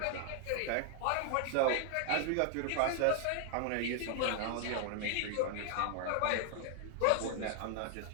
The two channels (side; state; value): both; different; correlation 0.00